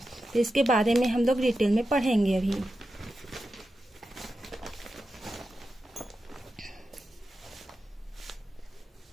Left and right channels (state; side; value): normal; both; correlation 0.90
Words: तो इसके बारे में हम लोग डिटेल में पढ़ेंगे अभी।